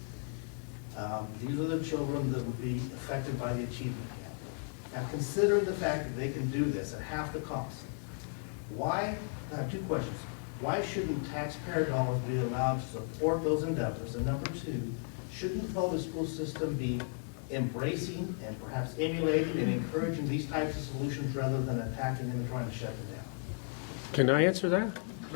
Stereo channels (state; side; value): silent; right; 55 dB below the other